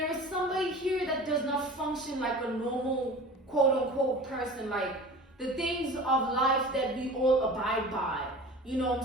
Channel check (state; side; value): normal; both; correlation 0.38